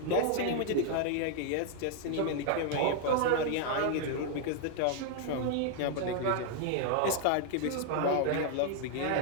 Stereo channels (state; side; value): different; both; correlation 0.00